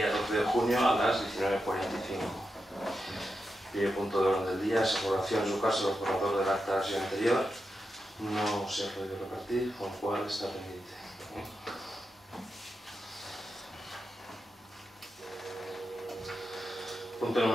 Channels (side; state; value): both; normal; correlation 0.88